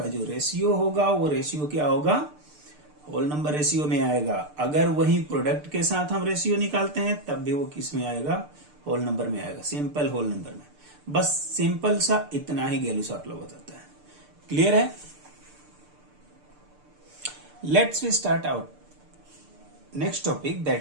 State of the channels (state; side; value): late; left; 6.7 ms